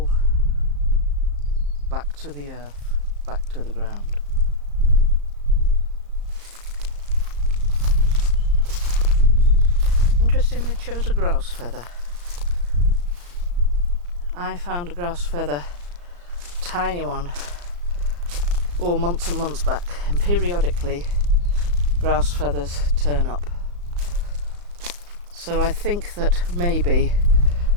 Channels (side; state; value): left; late; 34 ms